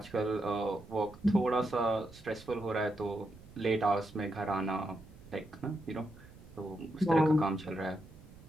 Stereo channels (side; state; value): right; noise; rumble, 20 dB below the sound